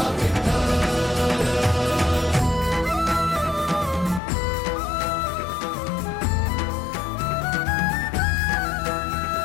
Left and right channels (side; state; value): right; drops out; at 4.2 s